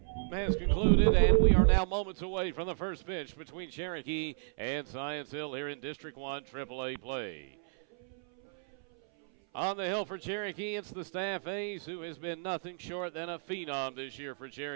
Has concluded, and we are now moments away from the first pitch between Cherokee and Science Hill here in District 1 AAA play. On the hill for Cherokee, it's the staff ace who has been nothing short than a phenom this year for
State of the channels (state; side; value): silent; left; 55 dB below the other